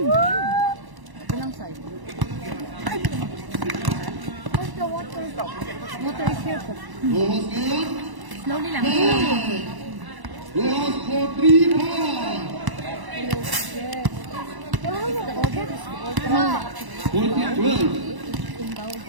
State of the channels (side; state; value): left; late; 1.0 ms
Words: Ilang side? Where's the water? Water is here po. Bukas ngayon. Slowly lang. Bukas for 3 points. 14-12.